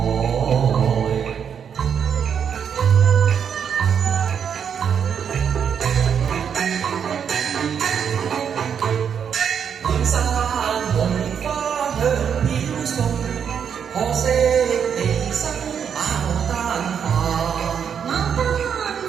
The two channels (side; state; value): left; quieter; 7.6 dB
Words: 滿山紅花香飄送，可惜離生牡丹花。牡丹